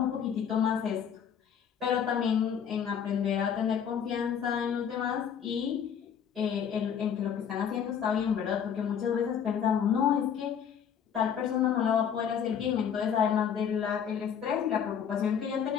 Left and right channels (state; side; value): quieter; right; 8.0 dB